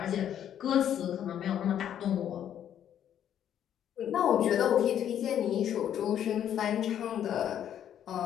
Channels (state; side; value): quieter; right; 10.1 dB